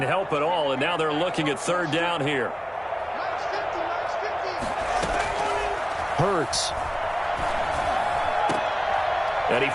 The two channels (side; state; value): both; identical; correlation 1.00